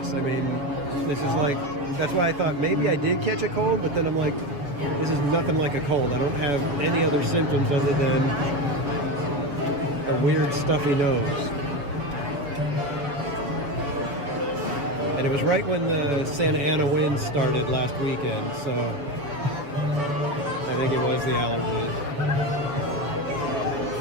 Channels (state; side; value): late; left; 7.0 ms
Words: I mean, this is like, that's why I thought maybe I did catch a cold, but then I'm like, this is nothing like a cold. I don't have any other symptoms other than a weird stuffy nose. And it was right when the Santa Ana winds started last weekend, so I think it was the allergies.